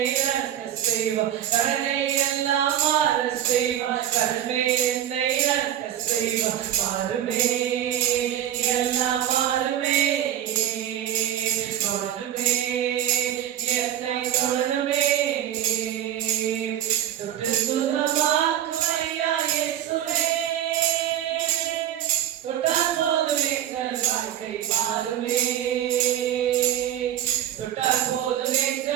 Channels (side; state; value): left; quieter; 10.9 dB